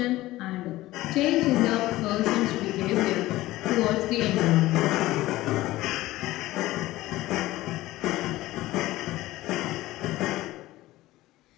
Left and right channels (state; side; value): quieter; right; 17.2 dB